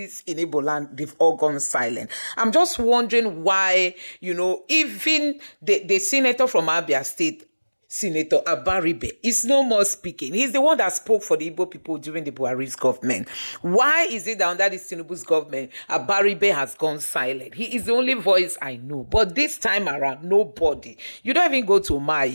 in Igbo land, they've all gone silent. I'm just wondering why, even the senator from Abia State, Senator Abaribe is no more speaking. He's the one that spoke for the Igbo people during the Buhari's government. Why is it that under this Tinubu's government, Abaribe has gone silent? He is the only voice I know. But this time around, nobody. You don't even go to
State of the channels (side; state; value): both; inverted; correlation -1.00